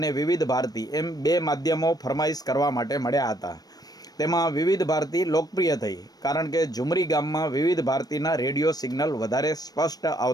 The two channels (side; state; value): right; late; 0.19 ms